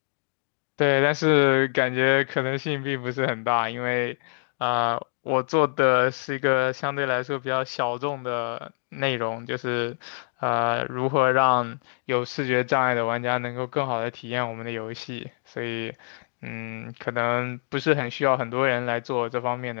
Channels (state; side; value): silent; right; digital silence